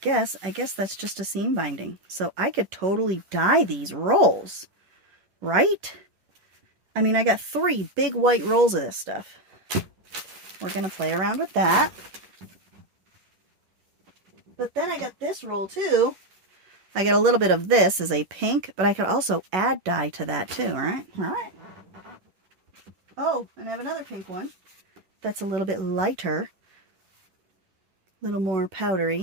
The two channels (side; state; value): left; late; 11 ms